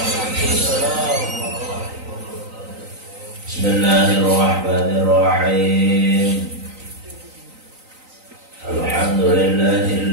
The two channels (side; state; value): left; late; 3.9 ms